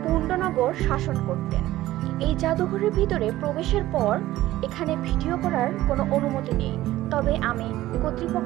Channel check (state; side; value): quieter; left; 15.6 dB